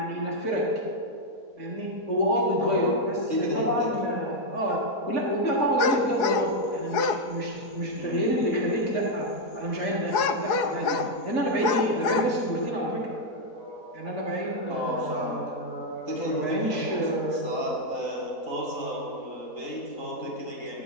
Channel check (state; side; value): late; right; 4.7 ms